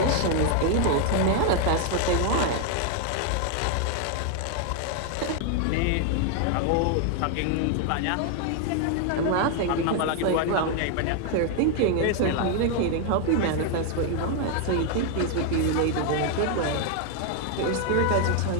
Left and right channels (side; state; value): both; different; correlation 0.00